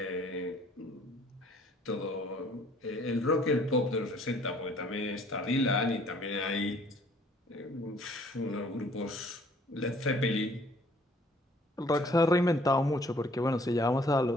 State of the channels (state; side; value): normal; both; correlation 0.58